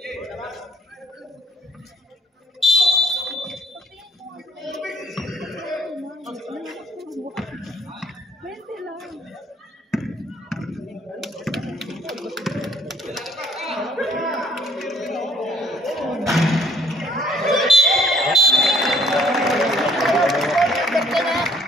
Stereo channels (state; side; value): normal; both; correlation 0.60